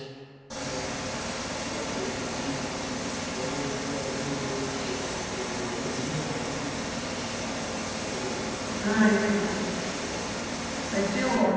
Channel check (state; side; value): identical; both; correlation 1.00